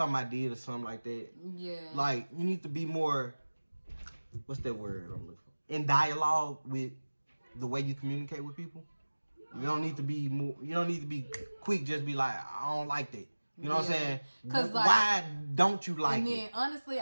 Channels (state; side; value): inverted; both; correlation -1.00